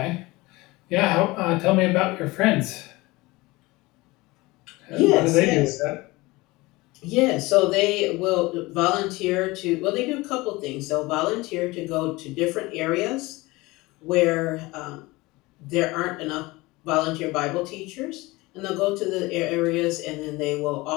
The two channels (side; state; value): right; quieter; 21.6 dB